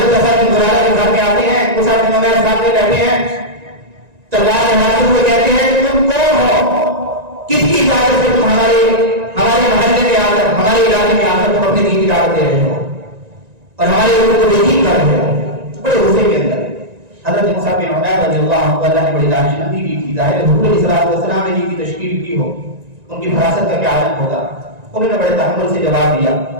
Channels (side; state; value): left; late; 1.9 ms